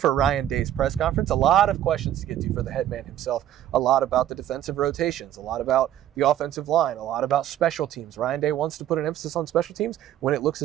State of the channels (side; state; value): left; quieter; 11.7 dB